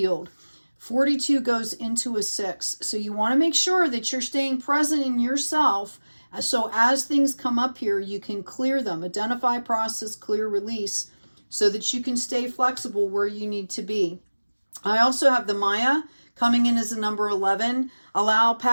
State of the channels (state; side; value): inverted; both; correlation -1.00